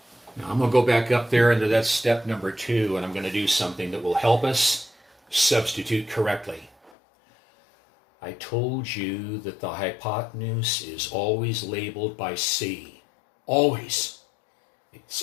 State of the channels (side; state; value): right; drops out; at 6.9 s